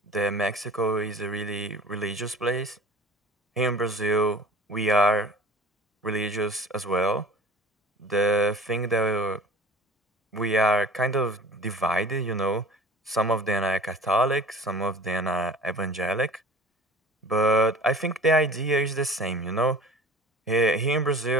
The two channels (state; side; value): normal; both; correlation 0.43